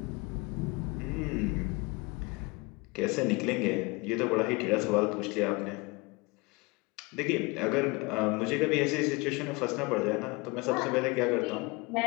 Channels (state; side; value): quieter; right; 25.9 dB